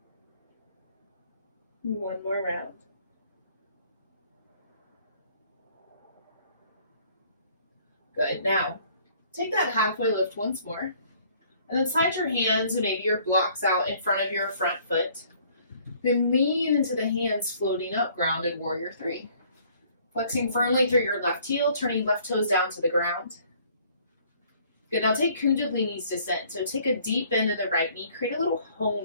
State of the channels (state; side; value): inverted; both; correlation -0.59